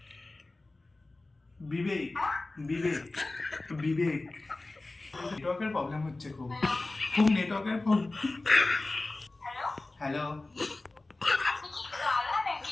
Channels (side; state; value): right; quieter; 3.1 dB